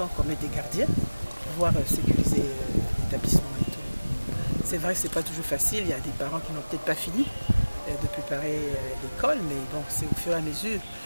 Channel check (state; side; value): inverted; both; correlation -1.00